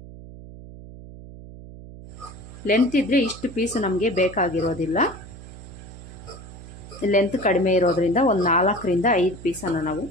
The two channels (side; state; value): right; noise; hum, 15 dB below the sound